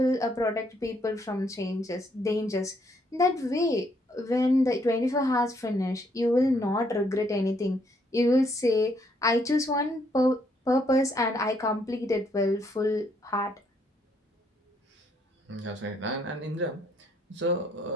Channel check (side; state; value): both; normal; correlation 0.71